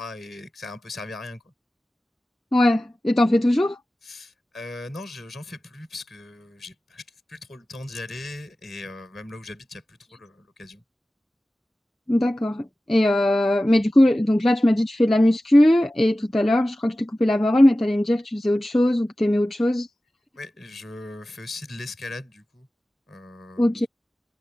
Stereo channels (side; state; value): both; normal; correlation 0.96